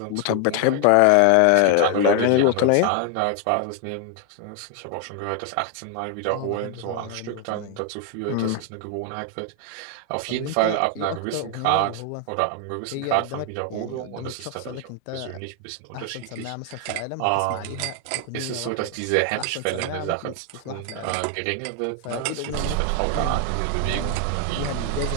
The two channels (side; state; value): both; different; correlation 0.00